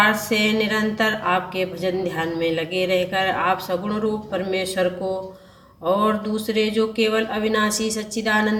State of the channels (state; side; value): identical; both; correlation 1.00